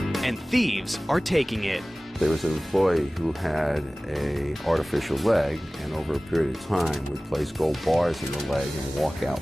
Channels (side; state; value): both; normal; correlation 0.98